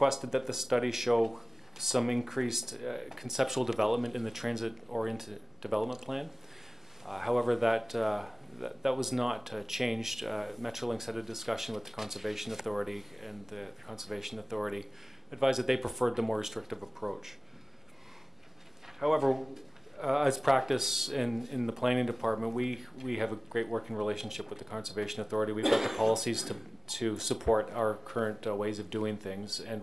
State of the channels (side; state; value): both; normal; correlation 0.98